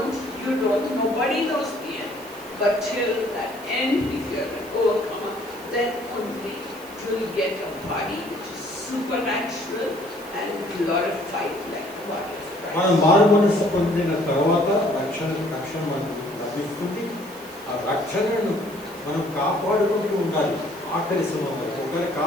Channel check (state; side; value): noise; right; hiss, 20 dB below the sound